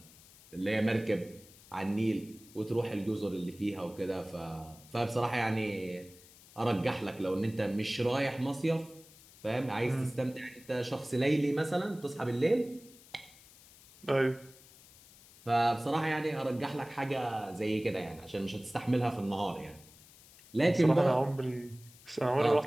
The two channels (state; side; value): noise; left; hiss, 23 dB below the sound